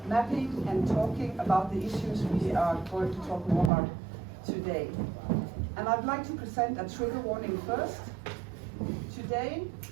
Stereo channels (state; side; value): drops out; left; at 3.7 s